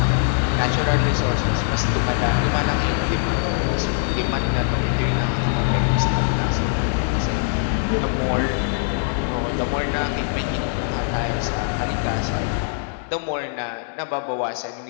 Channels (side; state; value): right; silent; digital silence